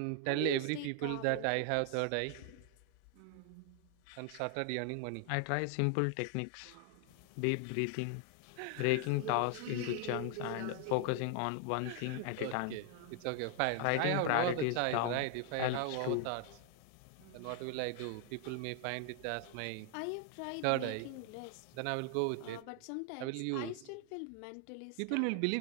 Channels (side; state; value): both; different; correlation 0.00